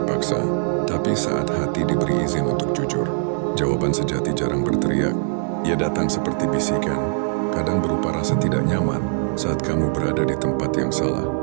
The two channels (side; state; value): left; silent; 64 dB below the other